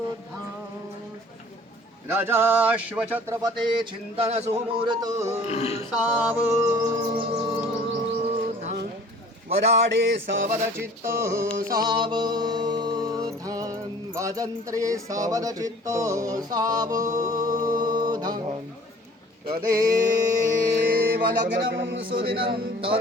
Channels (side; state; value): both; normal; correlation 0.50